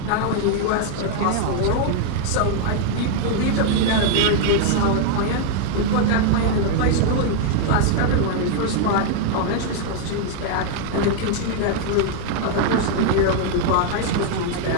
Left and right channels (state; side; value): different; both; correlation 0.00